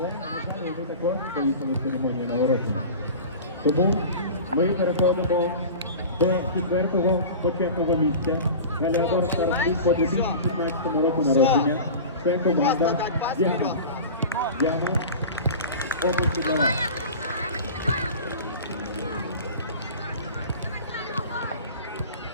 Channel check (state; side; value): inverted; both; correlation -0.34